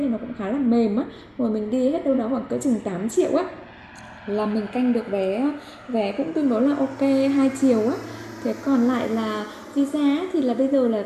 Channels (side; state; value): both; identical; correlation 1.00